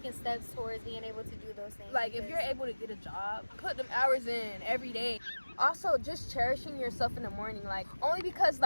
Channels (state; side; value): inverted; both; correlation -1.00